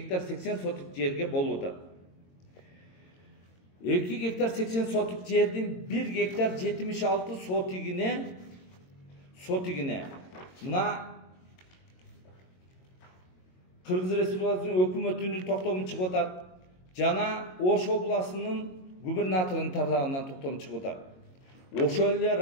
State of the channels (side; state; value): right; late; 22 ms